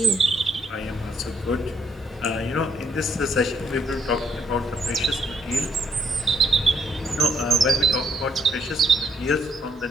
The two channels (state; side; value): normal; both; correlation 0.72